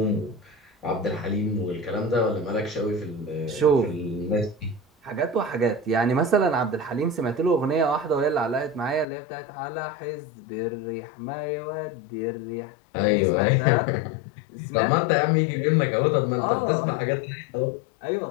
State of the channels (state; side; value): drops out; right; at 9.1 s